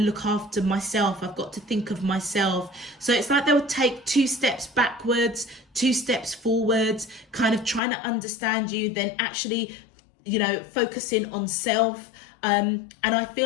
look after myself. I've got to think of myself. So it's like they'll take 2 steps backwards, 2 steps forwards, kind of trying to understand you, then actually, focusing on self. And I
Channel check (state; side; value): drops out; right; at 7.8 s